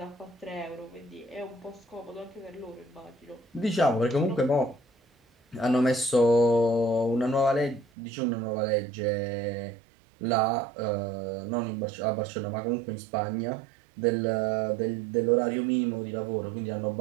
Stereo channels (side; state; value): left; drops out; at 7.9 s